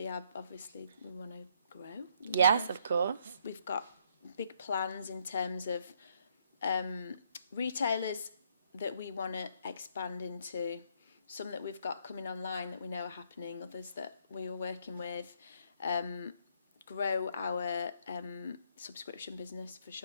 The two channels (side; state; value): both; inverted; correlation -0.69